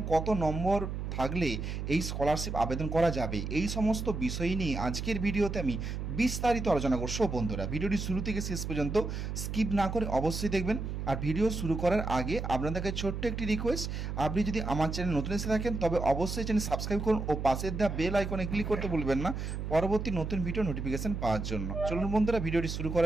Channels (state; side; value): noise; right; hum, 4 dB below the sound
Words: কত নম্বর থাকলে এই স্কলারশিপ আবেদন করা যাবে, এই সমস্ত বিষয় নিয়ে আজকের ভিডিওতে আমি বিস্তারিত আলোচনা করব। বন্ধুরা, ভিডিওটি শুরু থেকে শেষ পর্যন্ত স্কিপ না করে অবশ্যই দেখবেন। আর ভিডিও শুরু করার আগে আপনাদেরকে ছোট্ট একটি রিকোয়েস্ট, আপনি যদি আমার চ্যানেল নতুন এসে থাকেন তবে অবশ্যই চ্যানেল সাবস্ক্রাইব করুন ও পাশের দেওয়া বেল আইকনে ক্লিক করতে ভুলবেন না পরবর্তী নতুন ভিডিও নোটিফিকেশন পাওয়ার জন্য। চলুন বন্ধুরা, ভিডিওটি শুরু